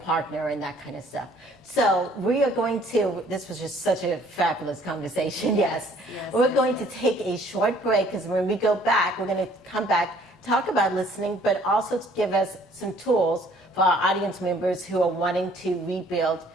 and that kind of stuff. So we are going to, this was just such a fabulous conversation, yes. We're going to take a short break, because when we go back, we're going to come back, talk about listening, but also to give us some tools for our audience members who are wanting to rebuild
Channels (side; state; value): both; normal; correlation 0.58